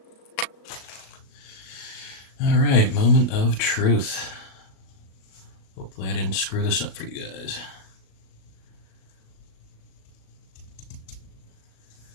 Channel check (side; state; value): right; late; 37 ms